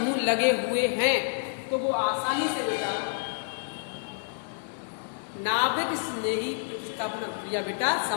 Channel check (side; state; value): right; silent; digital silence